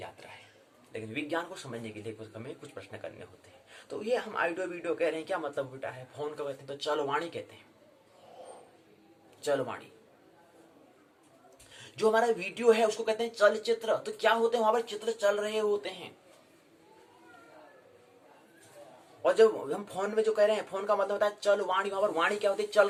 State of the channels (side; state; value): both; identical; correlation 1.00